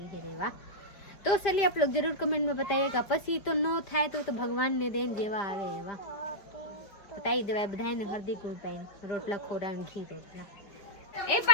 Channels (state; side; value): late; right; 5.1 ms